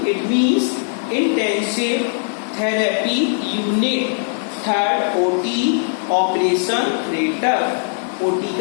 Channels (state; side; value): silent; right; digital silence